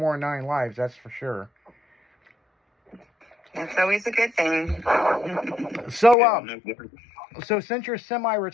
than 9 lives, that's for sure. That's always a good thing. So since you're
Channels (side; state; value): right; drops out; at 6.2 s